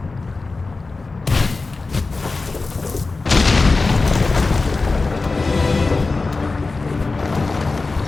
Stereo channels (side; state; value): right; quieter; 3.7 dB